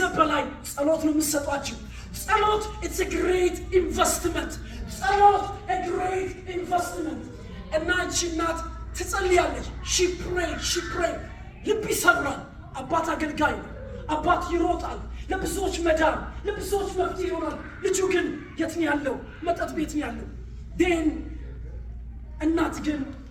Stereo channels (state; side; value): identical; both; correlation 1.00